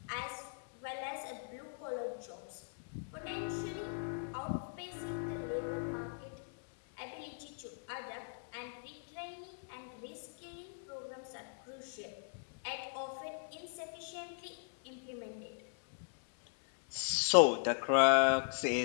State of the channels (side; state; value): right; silent; digital silence